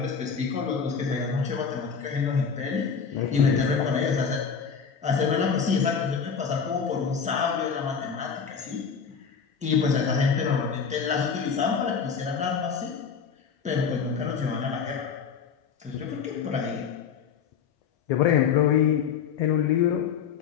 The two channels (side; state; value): right; quieter; 6.5 dB